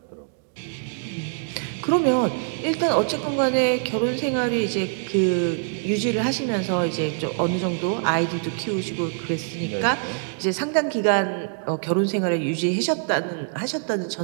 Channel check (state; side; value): silent; left; digital silence